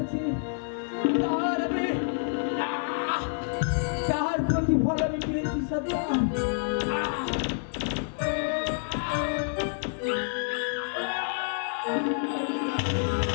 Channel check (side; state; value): right; silent; digital silence